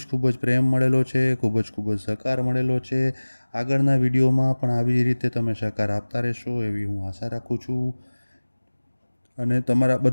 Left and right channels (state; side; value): inverted; both; correlation -1.00